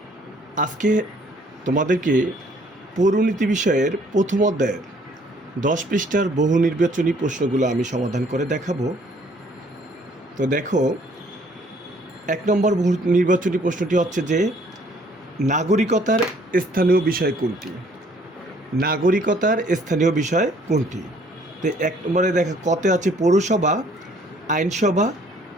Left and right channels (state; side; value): normal; both; correlation 0.60